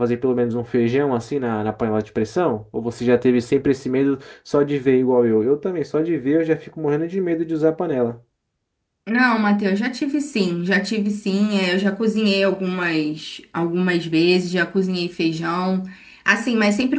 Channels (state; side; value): identical; both; correlation 1.00